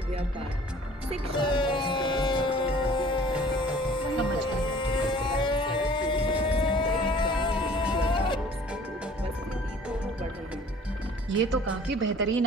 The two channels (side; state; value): both; normal; correlation 0.51